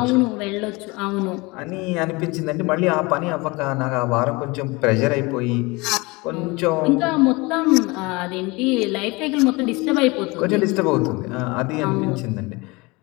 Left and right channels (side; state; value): right; quieter; 24.8 dB